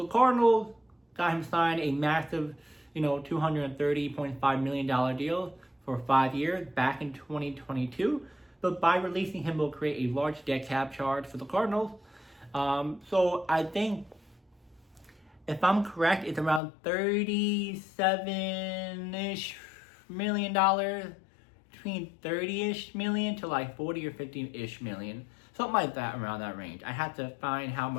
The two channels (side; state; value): right; drops out; at 16.6 s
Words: the Cardinals got him signed a massive, $230.5 million deal for 5 years back in 2022. But by releasing him, will create a large dead cap charge for the Cardinals. So I think, if I'm correct, it's around $37-ish million, between 30-ish million to like 40 or 50-ish million. Something like that, around that range. I have to find how